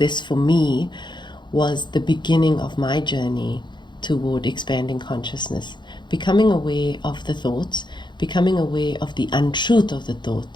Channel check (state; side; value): late; right; 0.22 ms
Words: for me was the beginning of my journey toward expanding consciousness, becoming aware of the thoughts, becoming aware of the untruth of the